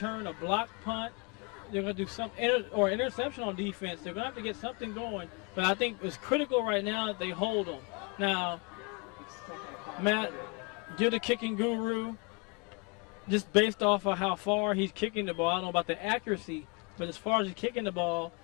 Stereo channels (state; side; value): quieter; right; 30.3 dB